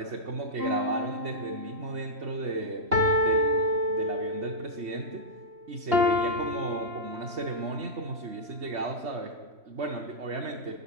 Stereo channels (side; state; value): left; late; 3.1 ms